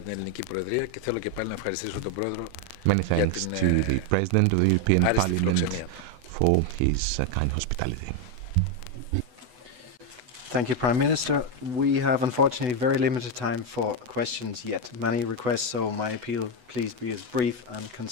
Many thanks to the President of the European Parliament for his kind hospitality. Thank you, Prime Minister. We have unfortunately very limited time for questions yet. Many requests, so my appeal, please be as brief and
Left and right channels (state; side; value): late; left; 8.1 ms